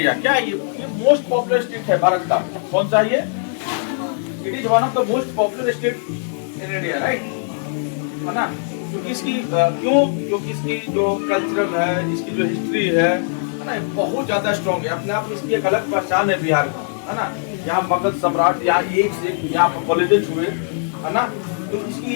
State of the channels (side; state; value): right; silent; 65 dB below the other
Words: क्या है ये मोस्ट पॉपुलर स्टेट है भारत का। कौन सा ये? It is one of the most popular state in India, right? है ना? क्योंकि इसकी क्योंकि इसकी जो कल्चरल है, इसकी जो हिस्ट्री है ना, बहुत ज्यादा स्ट्रॉन्ग है। अपने आप में इसकी एक अलग पहचान है बिहार का, है ना? यहाँ मगध सम्राट, यहाँ एक से यहाँ पर कॉलेजेस हुए, है ना? तो इसकी